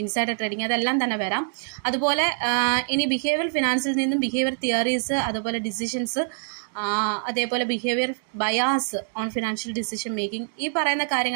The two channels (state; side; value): silent; left; 59 dB below the other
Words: ഇൻസൈഡർ ട്രേഡിങ്, അതെല്ലാം തന്നെ വരാം. അതുപോലെ ഇനി ബിഹേവിയർ ഫിനാൻസിൽ നിന്നും ബിഹേവിയർ തിയറീസ്, അതുപോലെ ഡിസിഷൻസ്, അതേപോലെ behaviour bias on financial decision making, ഈ പറയുന്ന